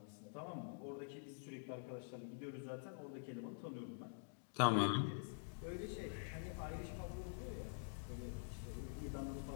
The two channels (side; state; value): right; silent; digital silence